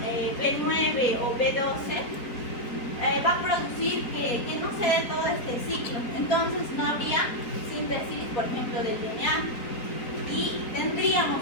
B9 o B12, va a producir que no se dé todo este ciclo. Entonces no habría síntesis, por ejemplo, del DNA, y tendríamos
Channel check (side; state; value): right; late; 4.3 ms